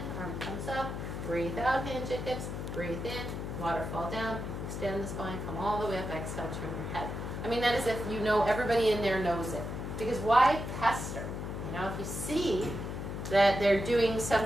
arm comes up, breathe out, hinge at hips, breathe in, waterfall down, extend the spine, come all the way up, exhale, turn your head. I mean, that is if you know, everybody in there knows it. Because why pester? You know, if you see that they're doing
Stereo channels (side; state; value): left; noise; hum, 5 dB below the sound